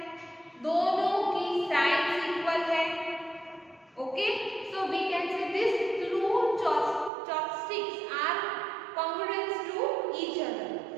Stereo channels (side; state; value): left; drops out; at 7.1 s